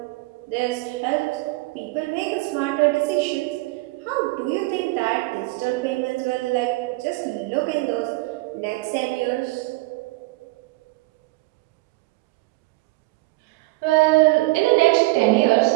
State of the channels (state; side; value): quieter; left; 22.3 dB